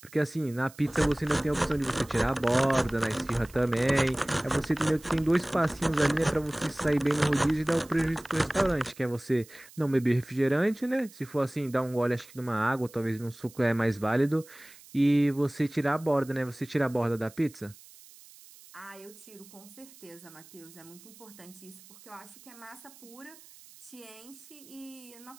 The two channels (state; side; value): noise; right; hiss, 22 dB below the sound